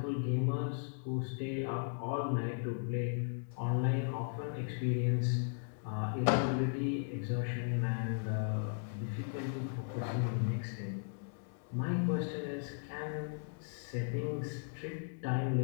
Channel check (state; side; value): silent; right; digital silence